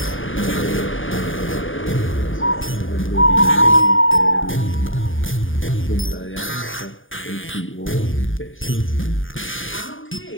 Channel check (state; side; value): late; right; 0.58 ms